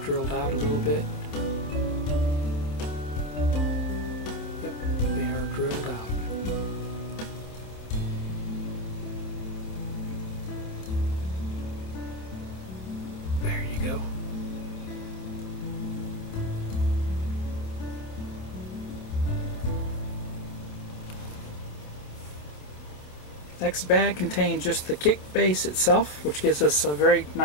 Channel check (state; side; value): late; right; 27 ms